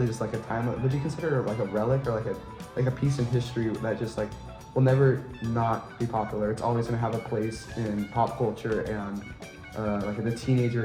just like a time. Would you consider it like a relic or like a piece in history that just like will never not be popular? It's always gonna have a place in pop culture and like the teenager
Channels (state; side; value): identical; both; correlation 1.00